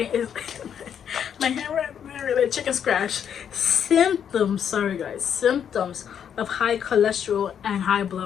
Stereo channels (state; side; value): quieter; right; 8.4 dB